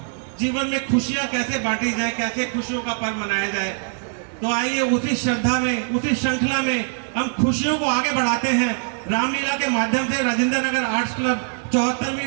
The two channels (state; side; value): silent; left; 55 dB below the other